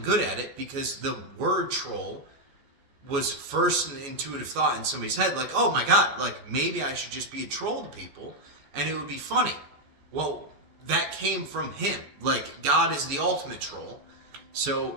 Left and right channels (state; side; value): late; left; 14 ms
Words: good at it, because the word troll was first an intuitive thought in somebody's head, like, oh my god, like, maybe I should just be a troll to people, and it would be funny. Well, that came from him. Like, God is the ultimate troll, so